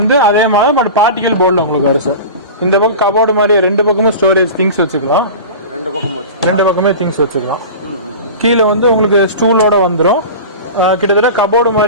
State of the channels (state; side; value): inverted; both; correlation -0.32